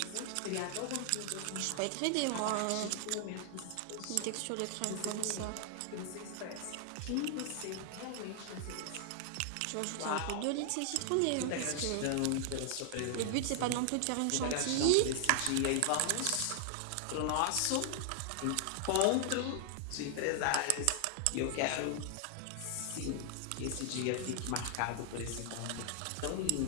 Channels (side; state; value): both; different; correlation 0.00